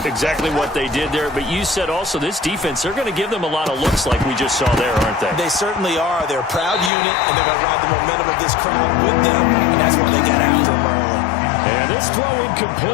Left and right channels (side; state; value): right; drops out; at 6.9 s